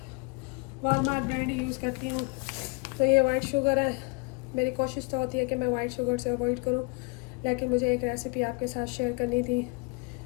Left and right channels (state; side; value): quieter; right; 29.9 dB